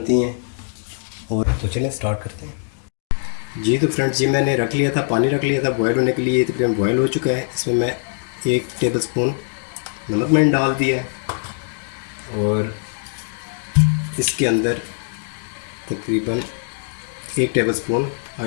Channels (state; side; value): silent; right; digital silence